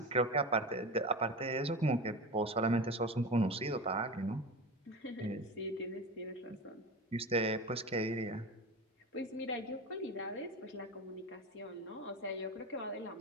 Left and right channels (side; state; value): both; normal; correlation 0.27